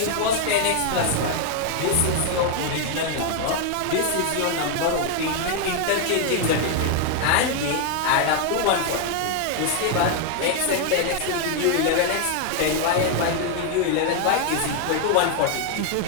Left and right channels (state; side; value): different; both; correlation 0.00